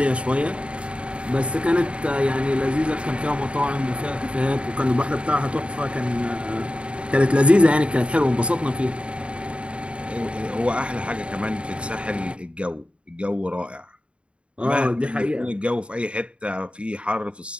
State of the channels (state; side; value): late; left; 0.059 ms